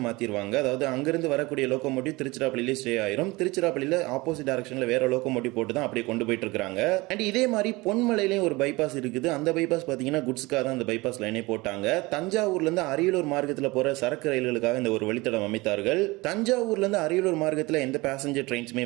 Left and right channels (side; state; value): left; quieter; 22.7 dB